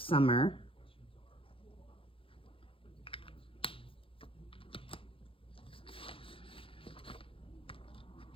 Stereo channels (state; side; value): late; right; 0.26 ms